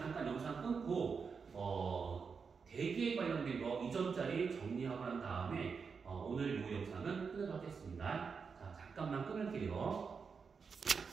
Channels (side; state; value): left; quieter; 5.6 dB